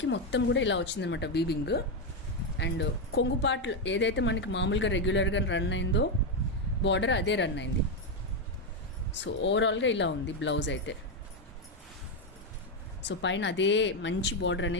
మొత్తం కూడా ఇలా వచ్చిందనమాట వీవింగ్. అండ్ కొంగు పార్ట్ ఏదైతే మనకి మామూలుగా రెగ్యులర్గా రన్ అయిందో బార్డర్ అదే రన్ అయింది. సో ఓవరాల్గా ఇలా ఉంది బ్లౌజ్ అయితే. సో పైన అదే మంచి బార్డర్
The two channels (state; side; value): normal; both; correlation 0.05